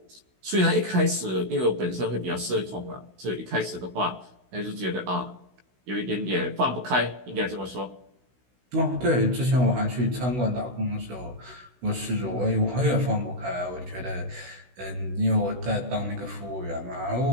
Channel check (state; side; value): late; left; 16 ms